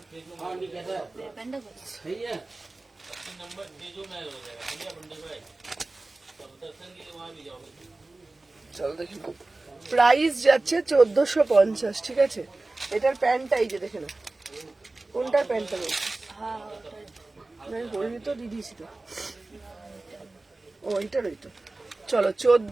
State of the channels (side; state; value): left; quieter; 3.1 dB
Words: तेजू महल नहीं कहता सही है, नंबर तेजू महल हो जाएगा, इंडिया बंडे को तब दर्शन के लिए वहाँ भी जाओगे। চলো দেখি প্রাইস যাচ্ছে 1450, ঠিক আছে? এটার প্যান্টটা এই যে দেখে না, কোনটার প্যান্টটা বলছি? আমি বলিনি তো, দিদিছি তো। ও এইটার ওই তো। চলো